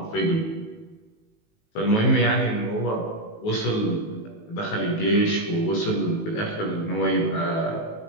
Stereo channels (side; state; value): right; late; 19 ms